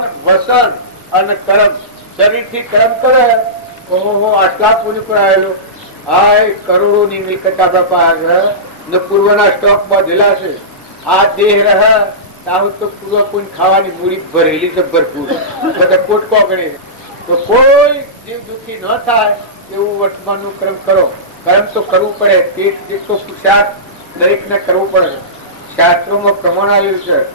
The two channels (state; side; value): normal; both; correlation -0.19